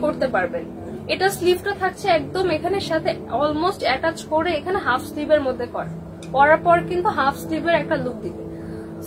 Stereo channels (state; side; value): identical; both; correlation 1.00